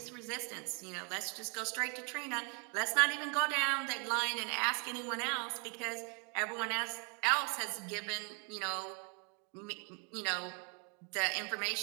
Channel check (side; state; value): left; quieter; 36.6 dB